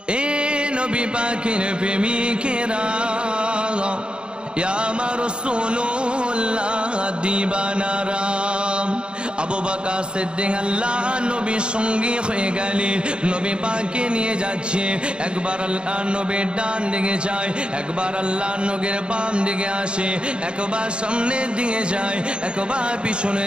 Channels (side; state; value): left; late; 0.052 ms